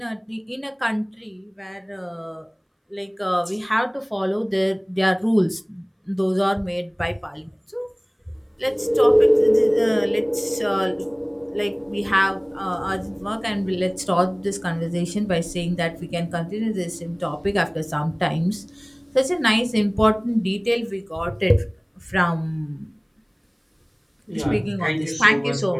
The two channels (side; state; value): both; identical; correlation 1.00